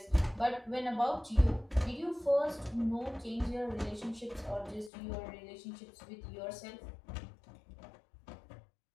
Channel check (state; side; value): drops out; right; at 4.9 s